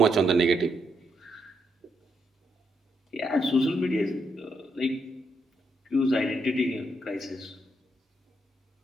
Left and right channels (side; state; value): both; normal; correlation 0.78